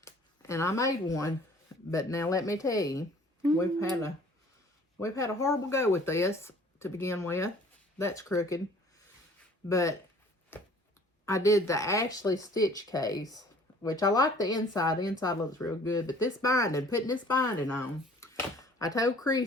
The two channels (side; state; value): both; normal; correlation 0.53